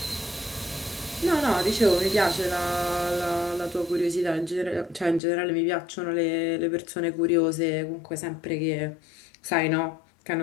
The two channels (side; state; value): right; drops out; at 5.2 s